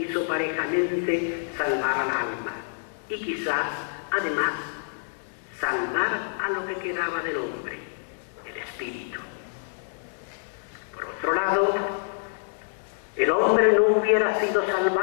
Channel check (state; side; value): silent; right; digital silence